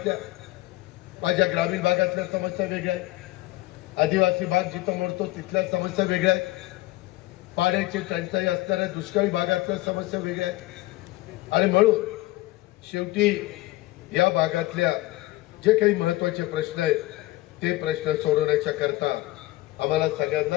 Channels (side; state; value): right; quieter; 18.8 dB